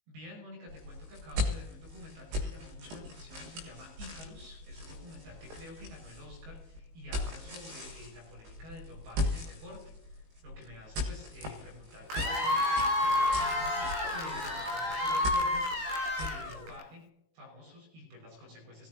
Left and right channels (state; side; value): late; left; 19 ms